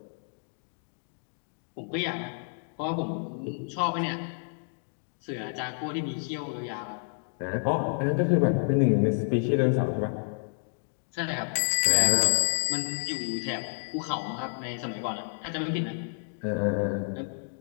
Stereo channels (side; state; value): right; silent; 58 dB below the other